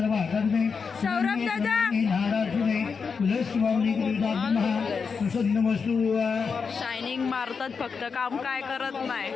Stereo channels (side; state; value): right; quieter; 5.5 dB